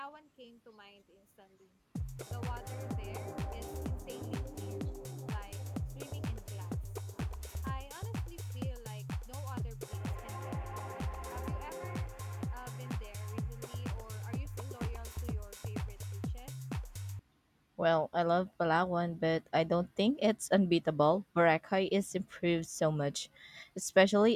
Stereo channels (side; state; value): both; identical; correlation 1.00